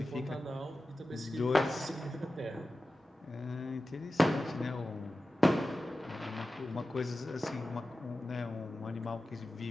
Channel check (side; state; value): both; normal; correlation 0.94